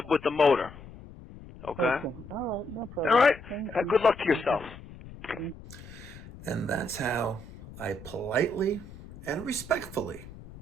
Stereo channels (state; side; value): noise; left; rumble, 16 dB below the sound